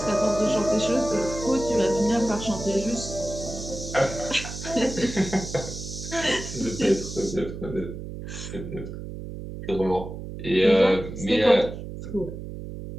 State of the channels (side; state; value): right; noise; hum, 9 dB below the sound